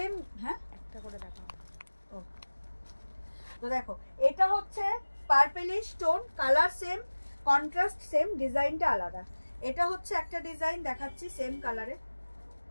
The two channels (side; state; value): both; inverted; correlation -1.00